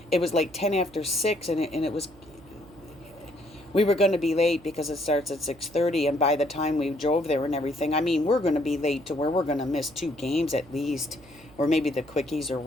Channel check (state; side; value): noise; right; hum, 24 dB below the sound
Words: it was like 10 after 6, and it was, we were going to be late because it starts at 6:30, and by the time we drove there and everything, I mean, we're going to be late to where we're going to miss 2 games at least, or maybe the quickies or